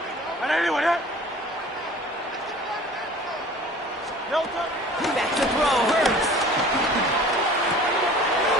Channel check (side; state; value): both; normal; correlation 0.45